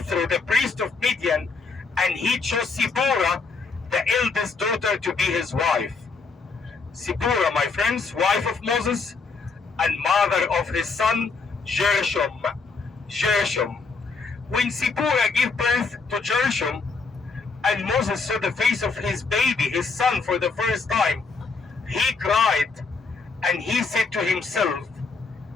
the priest of Midian, and he chose Sipporah, the eldest daughter, to be his wife. Sipporah, my friends, wife of Moses and mother of his son Gershom. When Sipporah gave birth to Gershom, and Moses saw the face of his baby, his son, for the first time, he cried and he said to himself,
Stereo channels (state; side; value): quieter; right; 4.4 dB